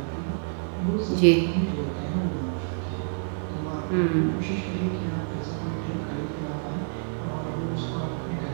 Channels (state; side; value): silent; left; 60 dB below the other